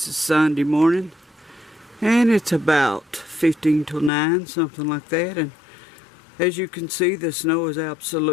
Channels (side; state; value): right; drops out; at 4.1 s